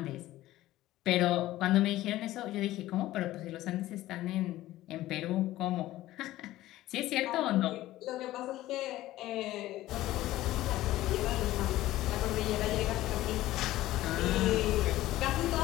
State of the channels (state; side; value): quieter; right; 15.7 dB